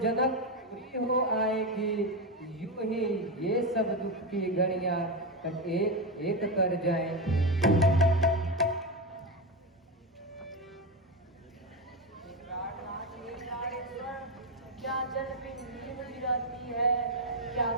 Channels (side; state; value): both; normal; correlation 0.12